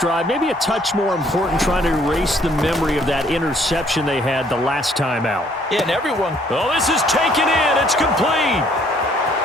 maybe a touch more important, trying to erase the memory of that interception they had the last time out. Yeah, and everyone. Oh, this is taken in. It's complete.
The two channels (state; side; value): normal; both; correlation 0.63